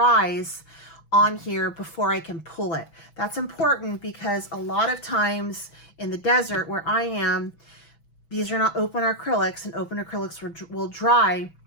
on here before I can pull it. That's important because a lot of times in the desert where I am, these are not open acrylics, and open acrylics will dry.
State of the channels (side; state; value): right; late; 6.1 ms